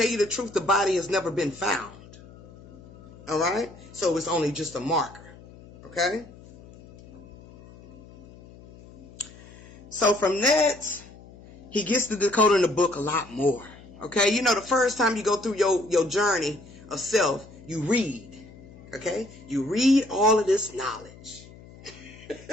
you the truth, the body has never been found. All right? So it's only just a marker. Okay? So from that, he gets to decoding the book a lot more. Okay? The first time you go through your journey of self, you read. Okay? You read all of this knowledge.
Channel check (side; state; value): left; noise; hum, 20 dB below the sound